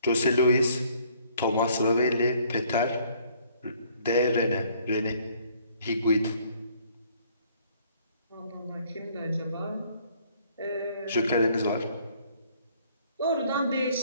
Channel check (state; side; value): inverted; both; correlation -0.61